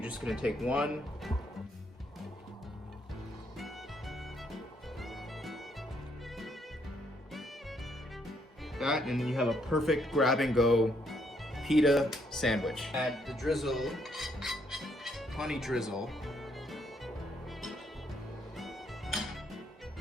just gonna take one. That, and then you have a perfect grab and go pita sandwich. Add the drizzle, honey drizzle.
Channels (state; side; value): normal; both; correlation 0.72